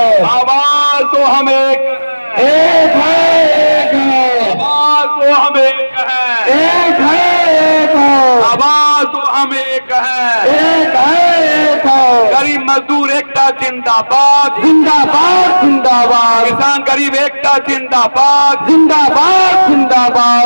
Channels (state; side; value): inverted; both; correlation -1.00